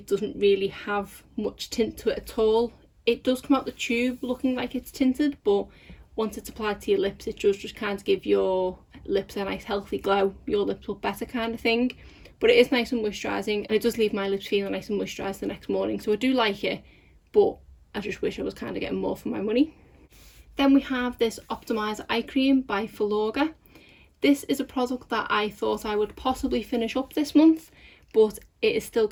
doesn't really have much tint to it at all. It does come out the tube looking like it's tinted, but once it's applied to your lips, it does just kind of give your lips a nice healthy glow. Your lips look better kind of thing. But it is nice and moisturising, and it does leave my lips feeling nice and moisturised the next morning. So I do like it, but I just wish I was kind of getting more for my money. Then we have this Optimizer Eye Cream by Flogger. This is a product that I thought I would possibly finish up this month, but it is still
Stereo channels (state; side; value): identical; both; correlation 1.00